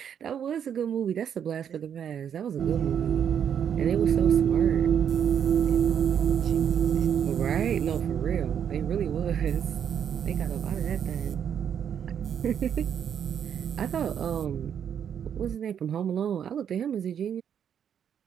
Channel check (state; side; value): quieter; left; 8.5 dB